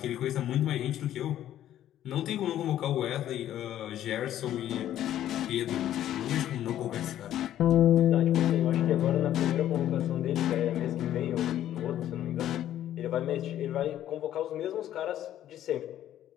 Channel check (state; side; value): quieter; right; 11.9 dB